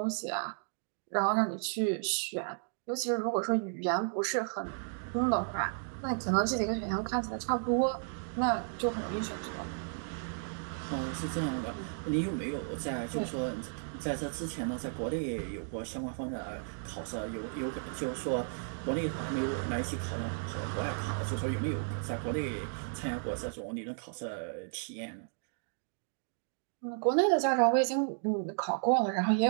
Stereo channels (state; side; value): silent; left; digital silence